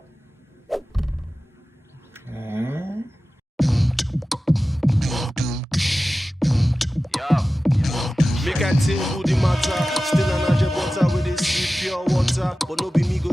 Make I tell you the matter. Still an agent butter with this pure water, but no be me go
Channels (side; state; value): both; normal; correlation 0.95